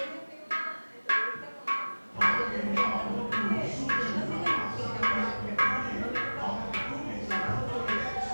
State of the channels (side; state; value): both; inverted; correlation -1.00